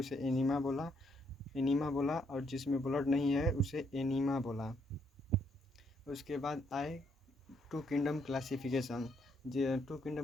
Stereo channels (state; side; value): normal; both; correlation 0.73